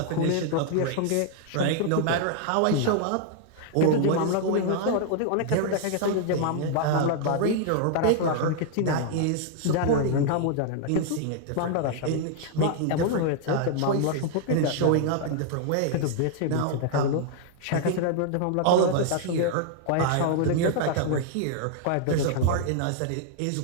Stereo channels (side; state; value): both; different; correlation 0.00